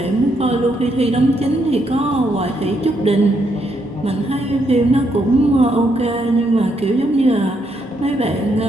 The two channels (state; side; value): normal; both; correlation 0.76